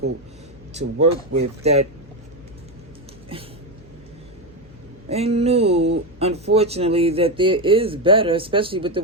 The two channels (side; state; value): left; noise; hum, 25 dB below the sound